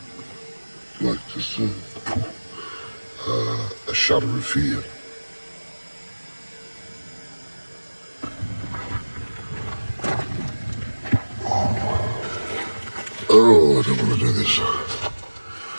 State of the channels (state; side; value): inverted; both; correlation -1.00